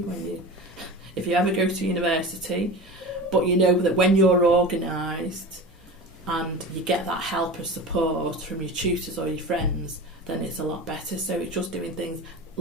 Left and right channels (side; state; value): both; normal; correlation 0.32